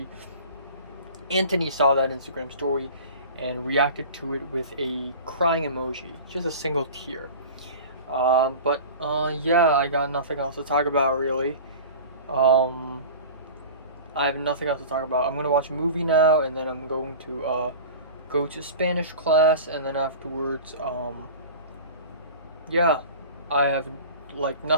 Anthony saw that Instagram story and reacted to it with a crying emoji, just a single tear. Yeah, I got nothing else to talk about really. Um, I have nothing else to talk about. I'm gonna watch a movie now, and then I'm going to go to Spanish class, and then afterwards, yeah, I have like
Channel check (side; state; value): both; inverted; correlation -0.37